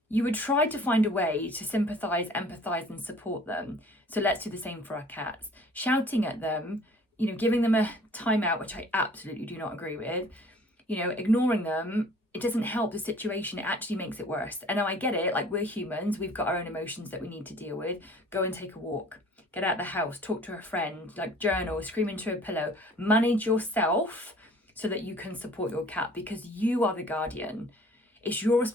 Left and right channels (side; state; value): both; normal; correlation 0.51